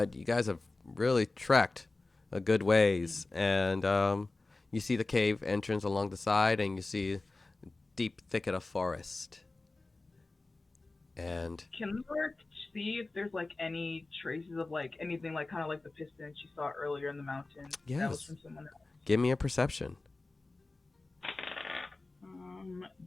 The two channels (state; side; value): quieter; right; 3.3 dB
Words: you guys have really trekked a good ways, and you see the cave entrance along the side, and you see a deep thicket of forest. And Can Lyra see if there's like any traces of like anything like kind of like the piston she saw earlier in the mountain? That was Yes. from someone else. give me a perception.